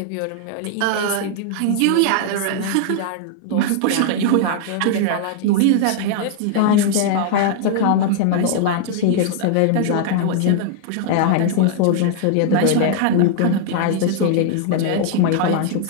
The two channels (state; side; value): different; both; correlation -0.01